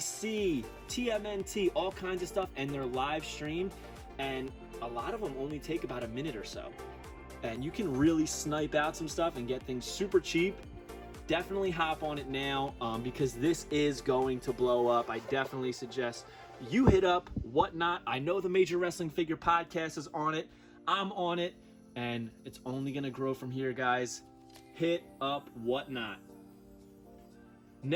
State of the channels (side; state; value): both; identical; correlation 1.00